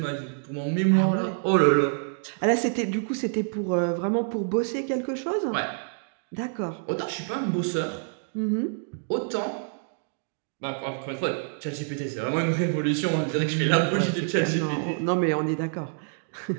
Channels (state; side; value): silent; left; digital silence